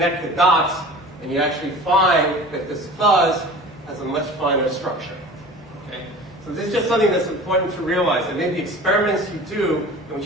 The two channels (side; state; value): both; normal; correlation 0.40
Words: the dots, and you actually find that this fuzz has a much finer structure. Okay? So this is just something that's important to realize. And maybe experiments you do in which